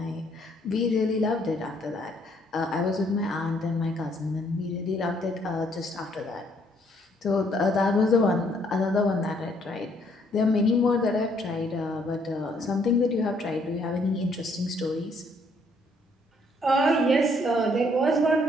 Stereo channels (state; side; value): normal; both; correlation 0.67